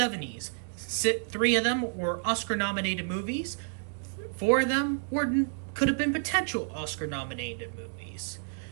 3 of them were Oscar-nominated movies. 4 of them could have been potential Oscar-nominated movies.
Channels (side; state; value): left; silent; digital silence